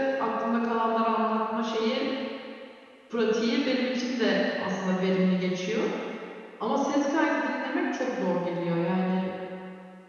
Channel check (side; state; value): both; identical; correlation 1.00